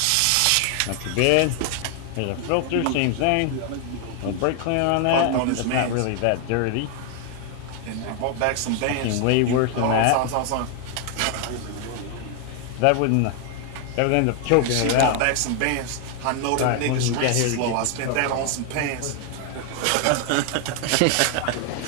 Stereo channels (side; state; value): both; different; correlation 0.00